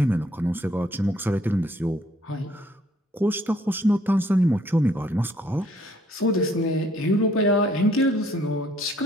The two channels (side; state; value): both; normal; correlation 0.63